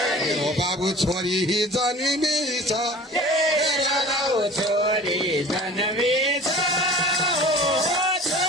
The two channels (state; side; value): normal; both; correlation 0.42